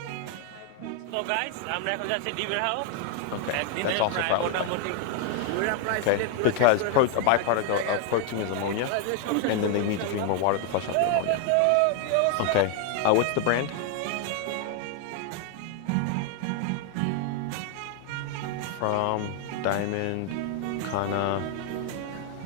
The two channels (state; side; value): different; both; correlation 0.00